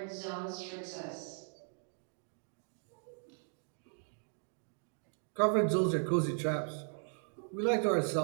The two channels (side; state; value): left; silent; 53 dB below the other